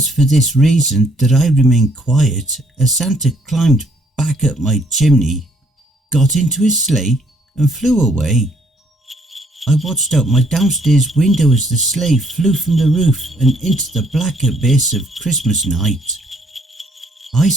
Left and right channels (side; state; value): both; normal; correlation 0.67